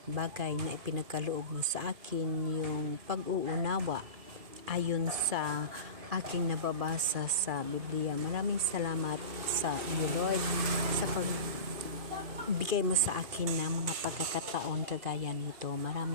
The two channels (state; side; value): late; left; 2.4 ms